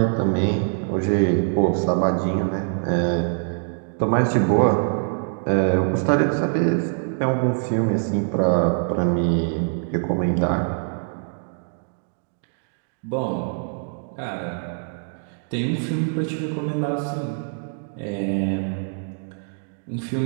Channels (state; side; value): silent; left; 63 dB below the other